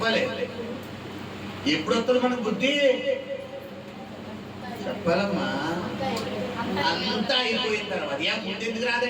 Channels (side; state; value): both; identical; correlation 1.00